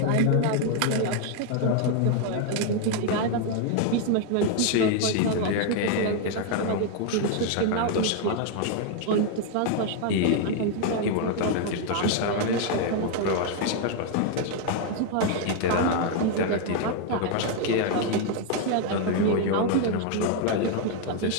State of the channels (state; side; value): different; both; correlation 0.00